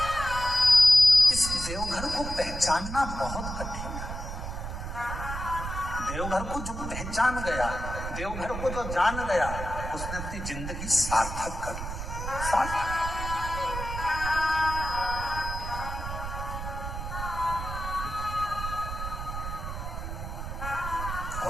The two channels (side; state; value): right; noise; rumble, 6 dB below the sound